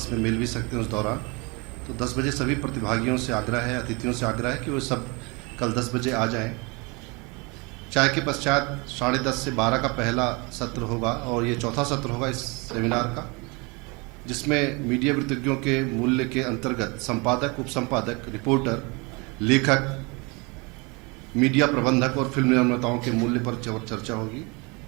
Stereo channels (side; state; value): left; quieter; 28.4 dB